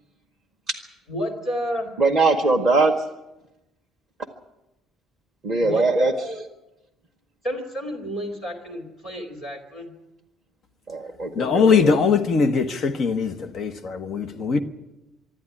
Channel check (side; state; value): both; normal; correlation 0.63